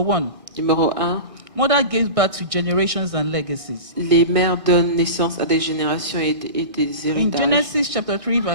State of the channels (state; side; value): late; left; 1.6 ms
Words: Numéro 1, mother gives birth to generations and legacies. les mères donnent naissance à des générations et des In héritages. Genesis chapter 3